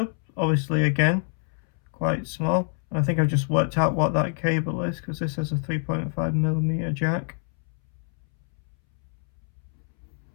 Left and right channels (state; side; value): silent; right; 61 dB below the other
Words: Obviously, again, quite small. I think I've just worked out what that cable is, because this has a 3.5mm jack.